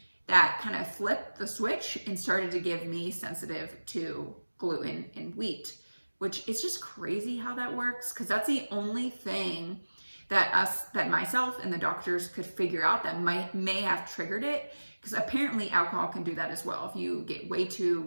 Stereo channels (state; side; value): inverted; both; correlation -1.00